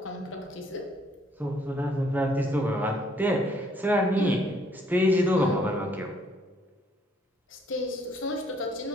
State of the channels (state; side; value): normal; both; correlation 0.66